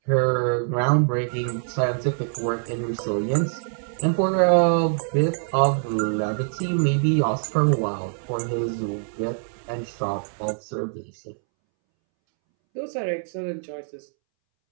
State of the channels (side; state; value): left; silent; 62 dB below the other